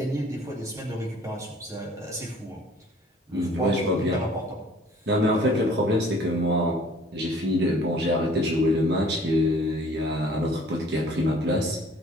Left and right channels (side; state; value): both; normal; correlation 0.54